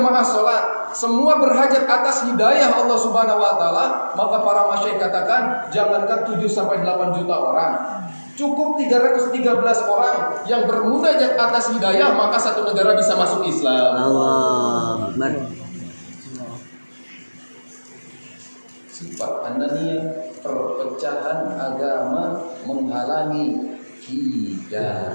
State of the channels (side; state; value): both; inverted; correlation -1.00